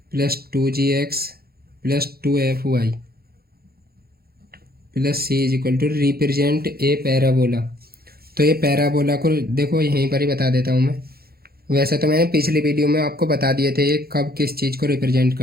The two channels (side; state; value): left; late; 0.45 ms